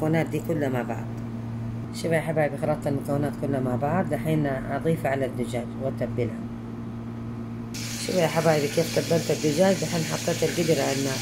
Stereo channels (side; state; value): both; identical; correlation 1.00